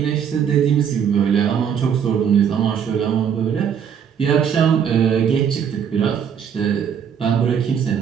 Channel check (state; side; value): quieter; left; 7.9 dB